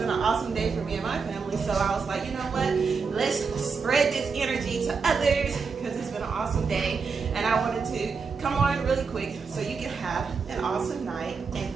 an awesome day for me and my family. So I was like, you know what? Let's spread this energy to others because it's been an awesome day. And I wanted to come on really quick so you can have an awesome night and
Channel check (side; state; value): left; quieter; 5.2 dB